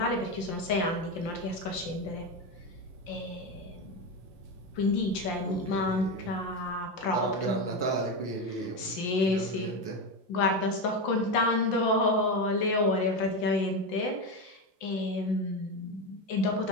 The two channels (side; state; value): right; late; 5.7 ms